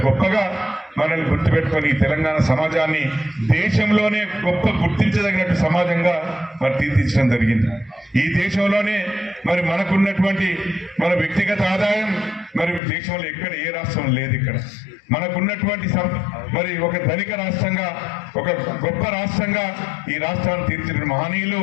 గొప్పగా మనల్ని గుర్తుపెట్టుకొని తెలంగాణ సమాజాన్ని దేశంలోనే గొప్ప గుర్తించదగినట్టు సమాజంగా మరి తీర్చిదిద్దడం జరిగింది. ఈ దేశంలోనే మరి మనకున్నటువంటి మన వ్యక్తిగత ఆదాయం మరి దేశంలో ఎక్కడ ఏ రాష్ట్రం లేదు. ఇక్కడ మనకున్నటువంటి మరి ఒక ధనిక రాష్ట్రంగా ఒక గొప్ప రాష్ట్రంగా ఈ రాష్ట్రాన్ని తీర్చిన మహనీయులు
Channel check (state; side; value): drops out; right; at 12.8 s